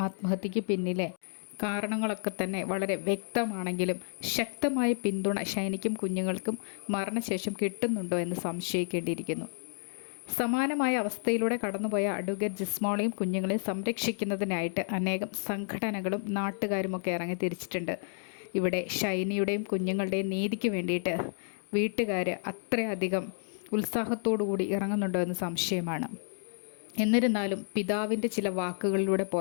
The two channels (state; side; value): silent; right; digital silence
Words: ആത്മഹത്യയ്ക്ക് പിന്നിലെ കാരണങ്ങളൊക്കെ തന്നെ വളരെ വ്യക്തമാണെങ്കിലും ശക്തമായ പിന്തുണ ഷൈനിക്കും കുഞ്ഞുങ്ങൾക്കും മരണശേഷം കിട്ടുന്നുണ്ടോ എന്ന് സംശയിക്കേണ്ടിയിരിക്കുന്നു. സമാനമായ അവസ്ഥയിലൂടെ കടന്നുപോയ അഡ്വക്കേറ്റ് ജിസ്മോളെയും കുഞ്ഞുങ്ങളെയും സംരക്ഷിക്കുന്നതിനായിട്ട് അനേകം സംഘടനകളും നാട്ടുകാരുമൊക്കെ ഇറങ്ങി തിരിച്ചിട്ടുണ്ട്. ഇവിടെ ഷൈനിയുടെയും കുഞ്ഞുങ്ങളുടെയും നീതിക്ക് വേണ്ടിയിട്ട് വീട്ടുകാർ അത്രയധികം ഉത്സാഹത്തോടുകൂടി ഇറങ്ങുന്നുണ്ടോ എന്ന് സംശയമാണ്. എന്നിരുന്നാലും പിതാവിൻ്റെ ചില വാക്കുകളിലൂടെ